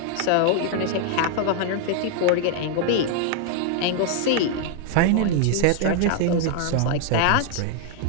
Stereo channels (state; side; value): different; both; correlation 0.00